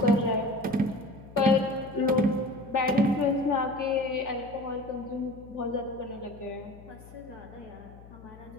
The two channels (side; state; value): left; noise; hum, 19 dB below the sound